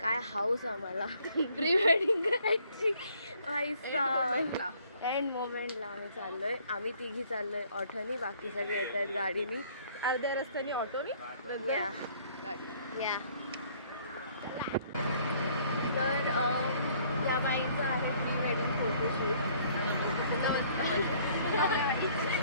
हाऊस आम्हाला प्री वेडिंग करायची. एंड मोमेंटला आम्ही चाललोय, आम्ही तिघी चाललोय ऑटोनी, बाकी सगळे येत आहेत गाडीनी, अर्ध्या रस्त्याने ऑटोनी. या तर त्या बाईचं आहे प्री वेडिंग फोटोशूट.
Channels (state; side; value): inverted; both; correlation -0.61